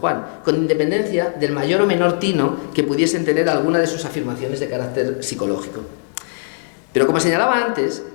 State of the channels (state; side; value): silent; right; digital silence